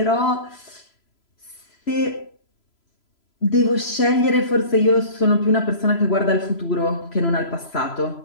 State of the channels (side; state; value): right; late; 3.0 ms